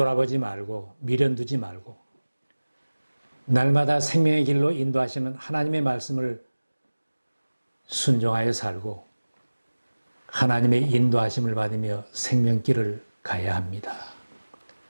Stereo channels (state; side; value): inverted; both; correlation -1.00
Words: 말고 미련 두지 말고 날마다 생명의 길로 인도하시는 하나님의 말씀을 순종하여 살고 하나님의 인도하심을 받으며 생명길을 가야 합니다.